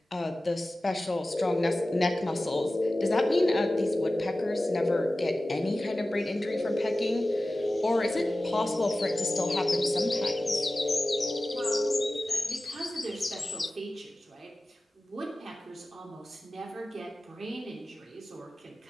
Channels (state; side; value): normal; both; correlation 0.96